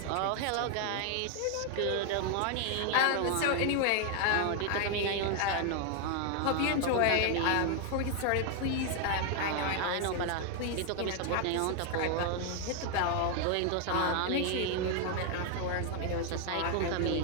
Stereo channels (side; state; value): both; different; correlation 0.01